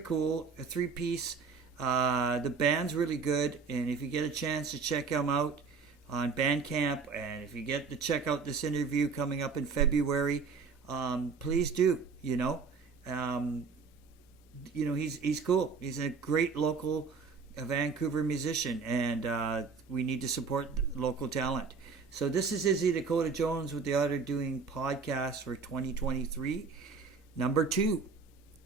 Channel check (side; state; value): left; quieter; 5.1 dB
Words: A 3-piece. The band's really good, and if you get a chance to check him out on Bandcamp, and if you get to check out this interview coming up in February, please do. He's cool. He's a great local Vancouver musician, and we need to support local talent. So this is Izzy Dakota Jones with the Otter doing podcast for 2023, number 2.